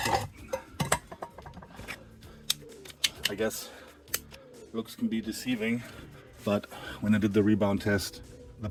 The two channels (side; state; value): both; identical; correlation 1.00